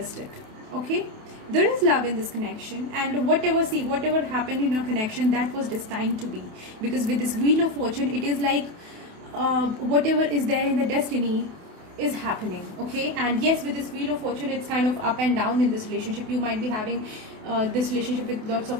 it, okay. There is love in this connection, and whatever happened in your connection, that was destined to be, because with this Wheel of Fortune, it is like whatever is there in the destiny is happening, okay. And yes, with this Wheel of Fortune, it's kind of up and down in this relationship. You might be having this relationship with lots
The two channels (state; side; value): late; left; 28 ms